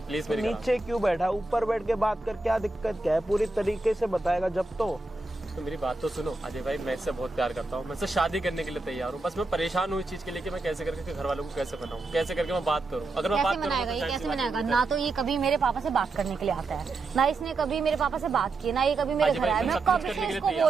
प्लीज मेरी। नीचे क्यों बैठा, ऊपर बैठ के बात कर, क्या दिक्कत क्या है? पूरी तरीके से बताएगा जब तो मेरी बात तो सुनो अजय भाई, मैं इससे बहुत प्यार करता हूँ, मैं इससे शादी करने के लिए तैयार हूँ। बस मैं परेशान हूँ इस चीज के लिए कि मैं कैसे करके घर वालों को कैसे बनाऊँ, कैसे करके मैं बात करूँ। अगर मैं बात करूँ ये कैसे मनाएगा? ना तो ये कभी मेरे पापा से बात करने के लिए आता है, ना इसने कभी मेरे पापा से बात की, ना ये कभी मेरे घर आया। मैं कब से इसको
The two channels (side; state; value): left; quieter; 3.3 dB